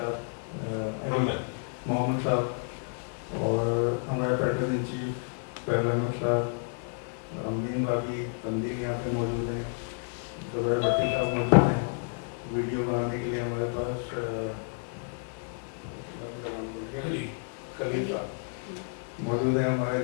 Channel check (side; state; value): right; silent; 58 dB below the other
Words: मोहम्मद साहब, और हमारे पैटर्न इन चीफ पहला साहब, अमीन भाभी तंदीर यहाँ पे मौजूद हैं, जुबैर भट्टी साहब मौजूद हैं। वीडियो बनाने के लिए हमारे पास खलील साहब मौजूद हैं, हमारे